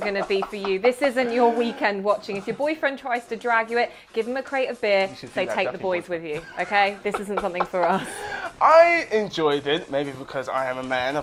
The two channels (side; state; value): both; identical; correlation 1.00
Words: to be for you. This isn't your weekend watching. If your boyfriend tries to drag you give him a crate of beer, say take the boys with you, okay? This isn't something for us. I enjoyed it, maybe because I am a man,